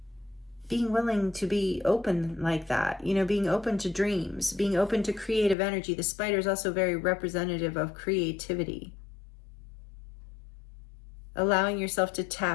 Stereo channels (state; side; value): drops out; right; at 5.6 s